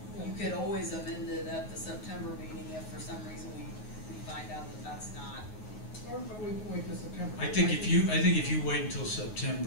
you could always amend it at the September meeting if for some reason we find out that that's not. Or we can wait till September. I think if you wait until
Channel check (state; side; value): late; right; 9.4 ms